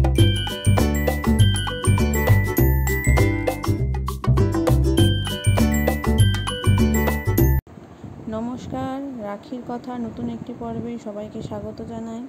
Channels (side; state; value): both; identical; correlation 1.00